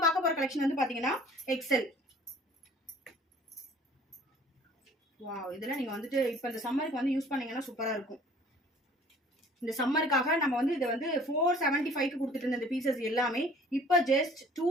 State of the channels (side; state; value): both; normal; correlation 0.52